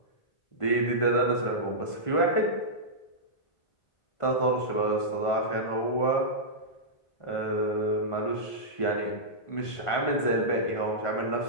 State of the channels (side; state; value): right; late; 1.5 ms